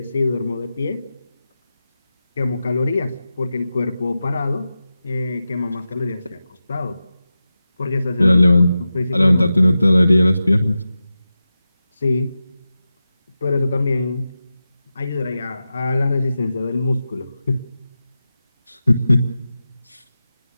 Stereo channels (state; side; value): inverted; both; correlation -0.93